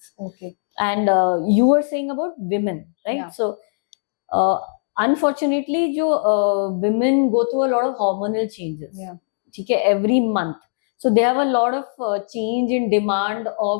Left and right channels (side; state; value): right; silent; digital silence